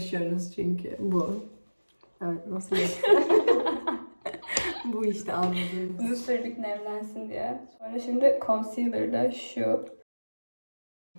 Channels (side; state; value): both; inverted; correlation -1.00